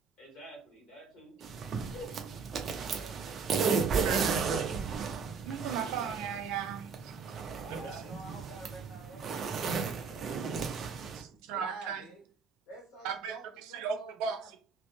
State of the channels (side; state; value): left; quieter; 5.5 dB